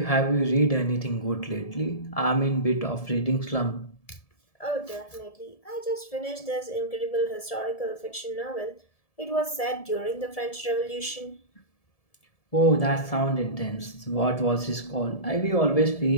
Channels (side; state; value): right; late; 1.7 ms